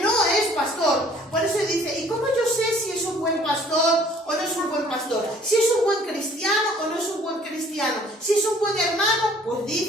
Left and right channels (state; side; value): normal; both; correlation 0.56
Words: es pastor. Por eso dice, ¿y cómo yo sé si es un buen pastor o no es un buen pastor? Si es un buen cristiano o no es un buen cristiano. Si es un buen hermano, pues